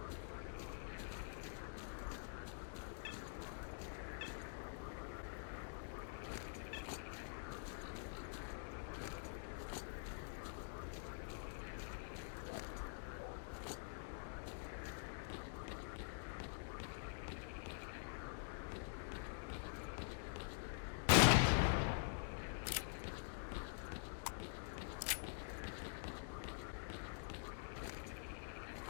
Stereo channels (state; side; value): silent; right; digital silence